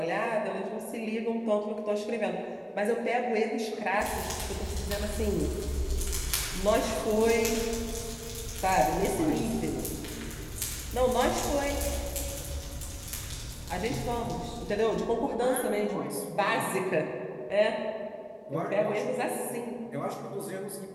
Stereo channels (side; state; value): both; identical; correlation 1.00